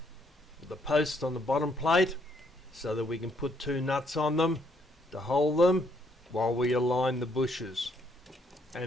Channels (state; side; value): normal; both; correlation 0.71